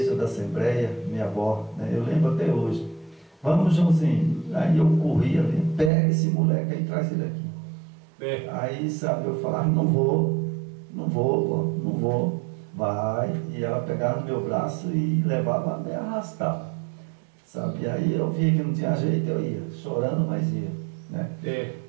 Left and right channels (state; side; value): drops out; left; at 5.9 s